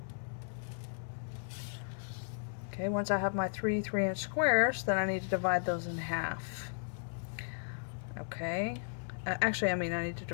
Okay, once I have my 3 3-inch squares, then I need to divide those in half. Okay, actually, I need to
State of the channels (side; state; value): right; silent; digital silence